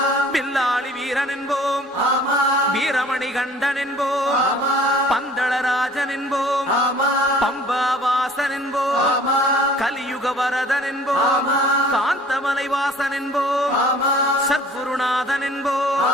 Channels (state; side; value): normal; both; correlation 0.51